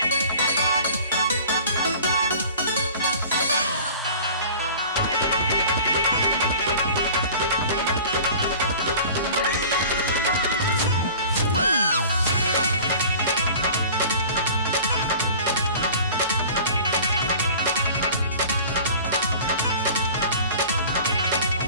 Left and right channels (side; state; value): both; inverted; correlation -0.43